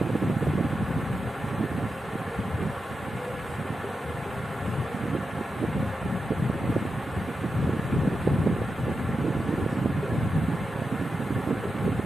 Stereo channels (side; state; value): both; normal; correlation 0.89